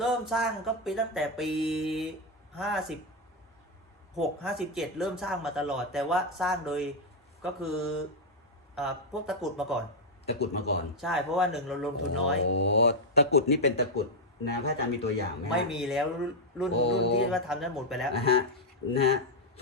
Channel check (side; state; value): both; normal; correlation 0.01